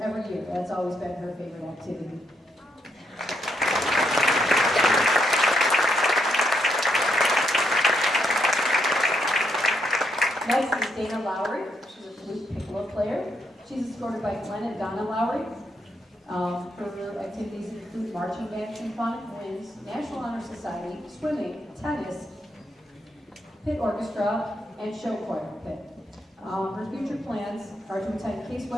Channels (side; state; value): both; normal; correlation 0.77